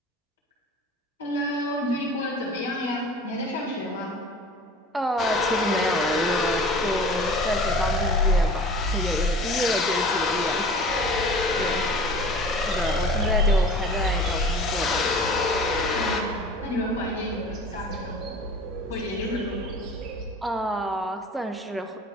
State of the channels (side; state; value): both; normal; correlation 0.42